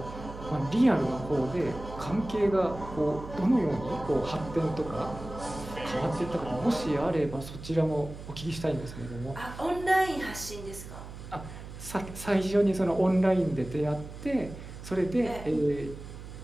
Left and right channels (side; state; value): right; noise; hum, 12 dB below the sound